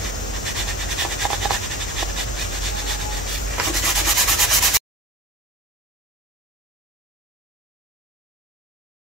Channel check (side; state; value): both; normal; correlation 0.33